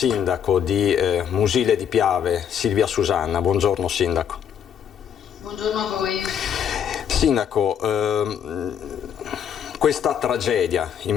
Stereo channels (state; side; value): quieter; right; 8.6 dB